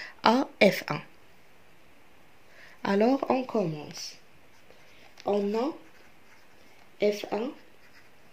à F1. Alors, on commence. On a F1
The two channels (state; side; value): identical; both; correlation 1.00